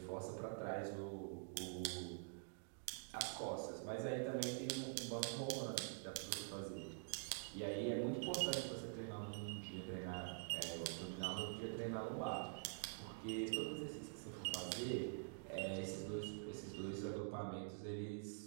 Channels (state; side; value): silent; left; digital silence